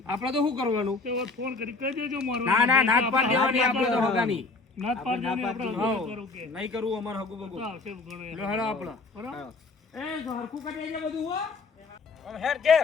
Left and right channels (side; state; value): right; quieter; 3.8 dB